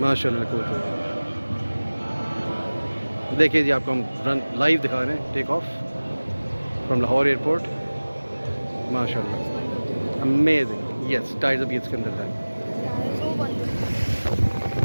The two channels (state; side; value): inverted; both; correlation -1.00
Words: माशाल्लाह cool. देखिए जी, आपको हम रन लाइव दिखा रहे हैं, take off from Lahore airport. माशाल्लाह अमेजिंग। यस, टाइर्स अभी इसके अंदर है।